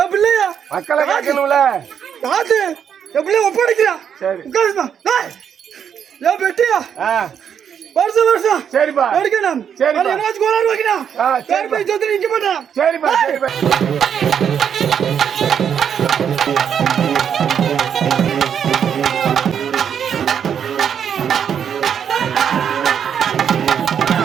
என் பிள்ளையா மக்களை காக்கணும்ல. காத்து என் பிள்ளைய ஒப்படைக்கிறா. சரி உட்காருமா. என் பெட்டியா வருஷம் வருஷம் சரிப்பா எடுக்கணும். சரி என்னாச்சு கோளாறு வைக்கணும். சரிப்பா சொத்து நிக்க மாட்டேன். சரிப்பா சரிப்பா.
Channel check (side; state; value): left; quieter; 8.1 dB